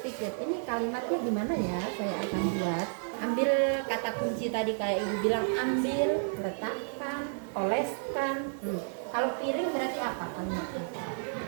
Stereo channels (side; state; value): left; silent; digital silence